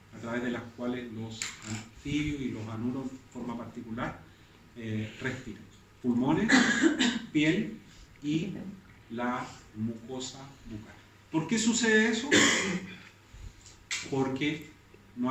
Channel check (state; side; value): identical; both; correlation 1.00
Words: a través de las cuales los anfibios y los anuros, de forma particular, respiran. Pulmones, piel y la mucosa bucal. ¿Por qué sucede eso? Porque no